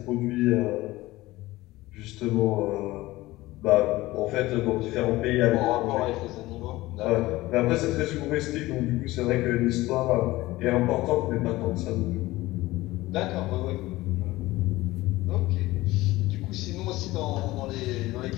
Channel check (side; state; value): right; quieter; 18.5 dB